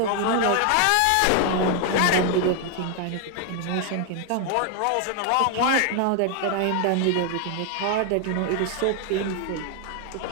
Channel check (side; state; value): both; different; correlation 0.01